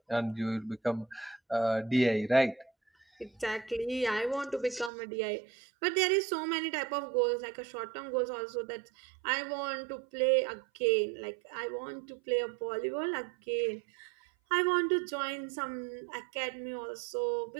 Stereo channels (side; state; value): left; drops out; at 4.9 s